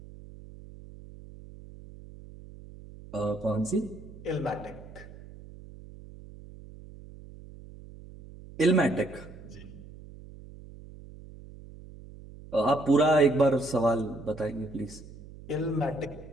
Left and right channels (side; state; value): right; noise; hum, 17 dB below the sound